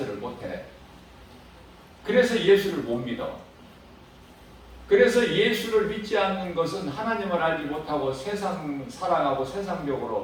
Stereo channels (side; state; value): both; identical; correlation 1.00